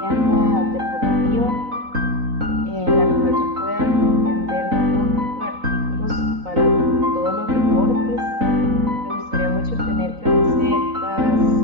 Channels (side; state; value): left; late; 3.9 ms